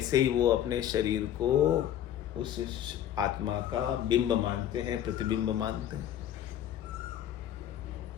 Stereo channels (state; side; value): quieter; right; 11.0 dB